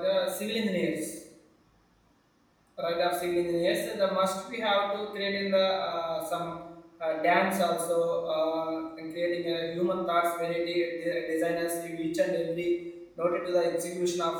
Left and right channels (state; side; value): identical; both; correlation 1.00